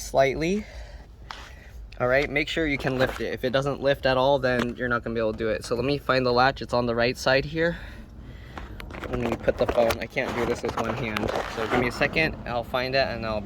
slightly. All right, make sure you can lift it. If it doesn't lift at all, then you're not going to be able to do it. So let me find the latch. It's on the right side here. Let me put the phone. I can't do this with one hand. So give me a second. I'll find it and I'll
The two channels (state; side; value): identical; both; correlation 1.00